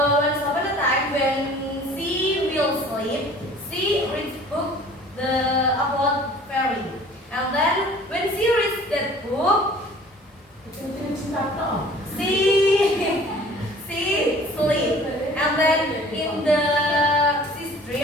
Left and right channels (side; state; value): both; normal; correlation 0.49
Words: upon a time, when she will sleep, she reads book about fairy, and then when she reads that book, she sleep, and then in the she